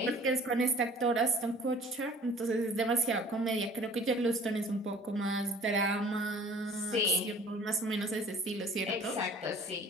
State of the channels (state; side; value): normal; both; correlation 0.49